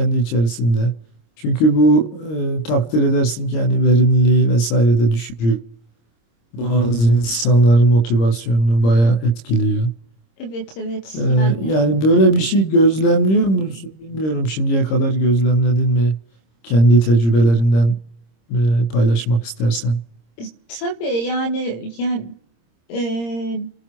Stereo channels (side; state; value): right; late; 26 ms